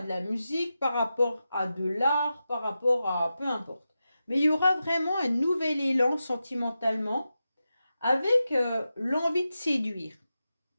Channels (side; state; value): both; inverted; correlation -0.91